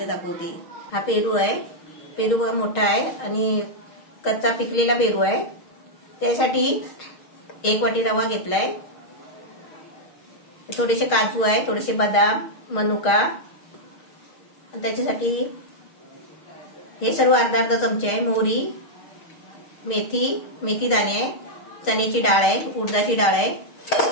दाखवते। हा पेरू आहे। पेरू बघा मोठा आहे आणि कच्चा पिकलेला पेरू आहे। त्यासाठी 1 वाटी रवा घेतलाय, थोडेसे काजू आहे, थोडेसे बदाम, मनुका, त्याच्यासाठी हे सर्व अर्धा चमचे आहे। मोहरी, मेथी दाणे आहे, चण्याची डाळ आहे, उडदाची डाळ आहे।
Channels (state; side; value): late; right; 6.4 ms